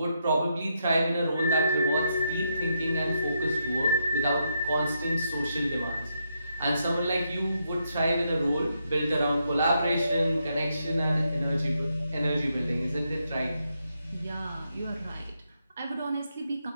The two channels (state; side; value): inverted; both; correlation -0.80